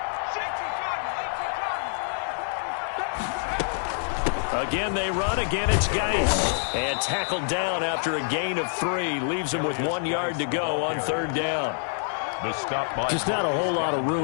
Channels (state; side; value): silent; right; digital silence